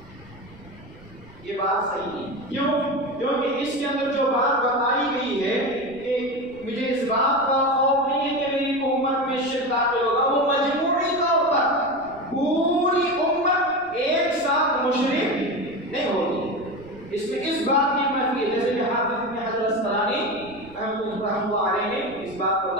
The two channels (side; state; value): right; noise; rumble, 25 dB below the sound